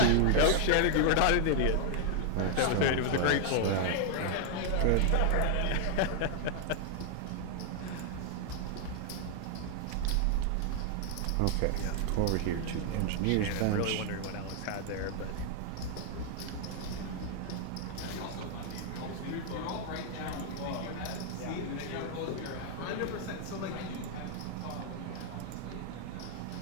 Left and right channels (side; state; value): both; different; correlation 0.00